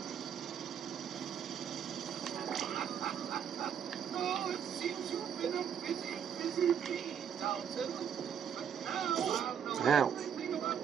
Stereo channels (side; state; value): left; quieter; 8.2 dB